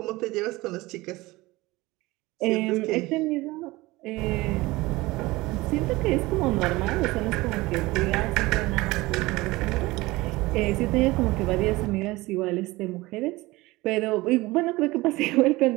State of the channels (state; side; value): quieter; left; 20.6 dB